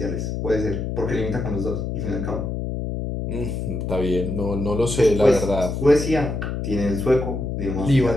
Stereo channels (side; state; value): left; noise; hum, 3 dB below the sound